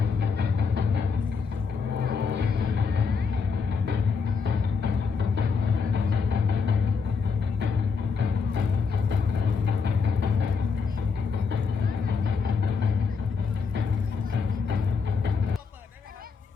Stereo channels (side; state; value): right; quieter; 5.3 dB